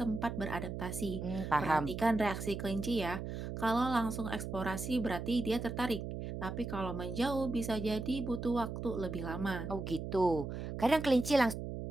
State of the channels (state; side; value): noise; right; hum, 6 dB below the sound